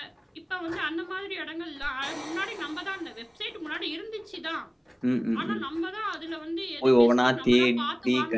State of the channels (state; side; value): identical; both; correlation 1.00